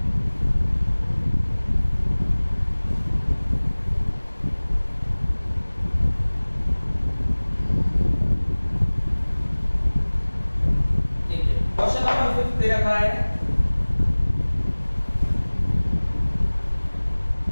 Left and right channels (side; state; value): both; inverted; correlation -1.00